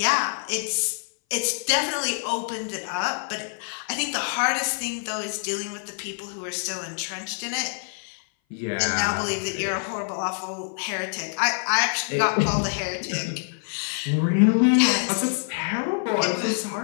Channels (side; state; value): right; silent; 58 dB below the other